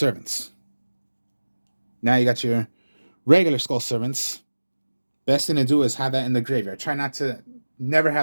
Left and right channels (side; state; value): both; inverted; correlation -1.00